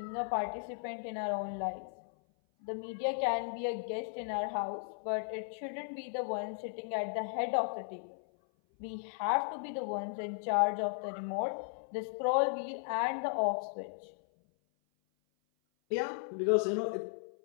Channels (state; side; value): silent; right; 54 dB below the other